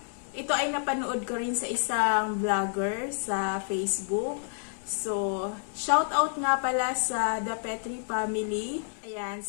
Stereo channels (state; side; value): silent; right; digital silence